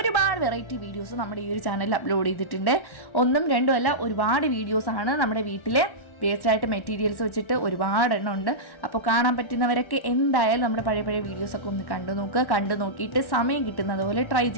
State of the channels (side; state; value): right; late; 1.1 ms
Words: വെറൈറ്റി വീഡിയോസ് നമ്മുടെ ഈ ഒരു ചാനലിൽ അപ്ലോഡ് ചെയ്തിട്ടുണ്ട്. 1ഉം 2ഉം അല്ല, ഒരുപാട് വീഡിയോസാണ് നമ്മുടെ വീട്ടിലെ വേസ്റ്റായിട്ട് മെറ്റീരിയൽസ് വെച്ചിട്ട് ഒരുപാട് എണ്ണം ഉണ്ട്. അപ്പോൾ കാണാൻ പറ്റുന്നവരൊക്കെ എന്തായാലും നമ്മുടെ പഴയ വീഡിയോസൊക്കെ ഒന്ന് കണ്ടു നോക്കിയിട്ട് സമയം കിട്ടുന്നത് പോലെ ട്രൈ